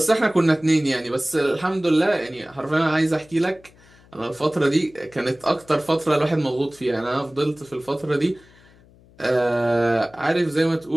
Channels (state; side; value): noise; left; hum, 27 dB below the sound